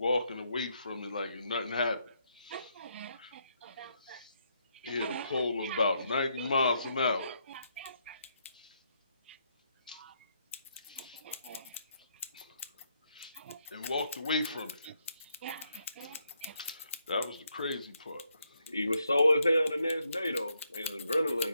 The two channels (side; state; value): both; inverted; correlation -0.76